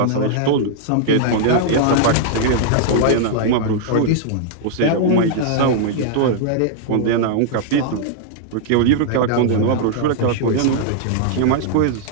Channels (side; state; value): both; different; correlation -0.01